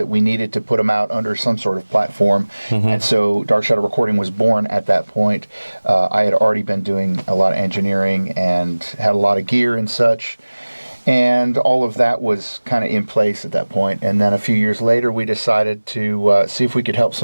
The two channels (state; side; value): inverted; both; correlation -1.00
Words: we needed to put them out under some sort of platform. And so Dark Shadow Recording was born at that point. I had already been doing a lot of engineering and had a lot of gear and such. And all of that was kind of in place at that point. And then a few years later, we decided to see if we could help